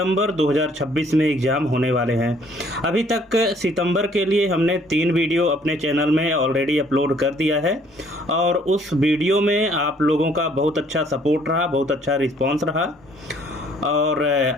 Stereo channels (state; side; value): normal; both; correlation 0.61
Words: 2026 में एग्ज़ाम होने वाले हैं। अभी तक सितंबर के लिए हमने 3 वीडियो अपने चैनल में ऑलरेडी अपलोड कर दिया है और उस वीडियो में आप लोगों का बहुत अच्छा सपोर्ट रहा, बहुत अच्छा रिस्पॉन्स रहा। और